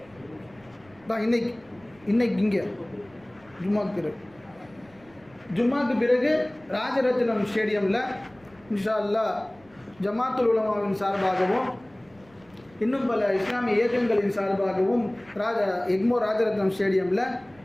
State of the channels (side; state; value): right; noise; rumble, 28 dB below the sound